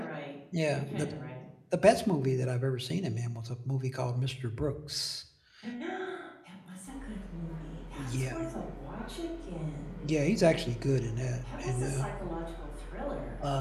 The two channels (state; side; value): identical; both; correlation 1.00